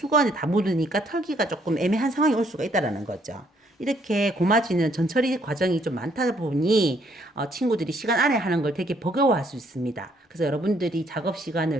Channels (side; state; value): both; normal; correlation 0.68